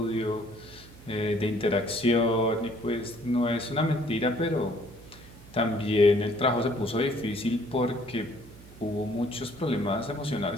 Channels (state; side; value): noise; right; hum, 20 dB below the sound